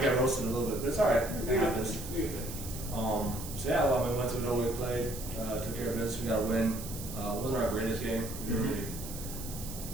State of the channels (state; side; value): noise; right; hiss, 11 dB below the sound